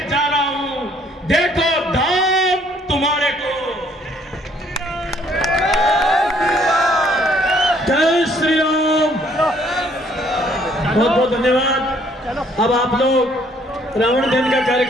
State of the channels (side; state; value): both; normal; correlation 0.63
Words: जा रहा हूं, देखो धाम तुम्हारे को। जय श्री राम। बहुत बहुत धन्यवाद। अब आप लोग रावण दहन का